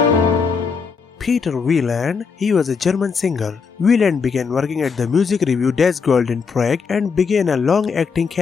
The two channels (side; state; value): right; quieter; 5.5 dB